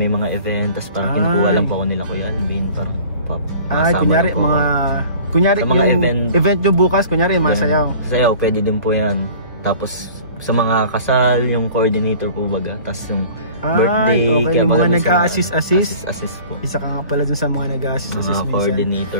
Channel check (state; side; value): inverted; both; correlation -0.46